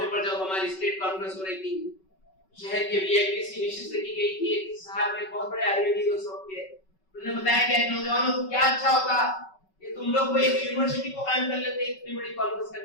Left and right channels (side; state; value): right; late; 5.3 ms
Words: پر جب ہماری اسٹیٹ کانفرنس ہو رہی تھی، شہر کے وی آئی پی سی نشست کی گئی تھی، ایک صاحب ایک بہت بڑے عالم دین اس وقت کے، انہوں نے بتایا کہ نوجوانوں کو کیا اچھا ہوتا کہ تم لوگ کوئی ایک یونیورسٹی کو قائم کر لیتے اتنی بڑی کانفرنس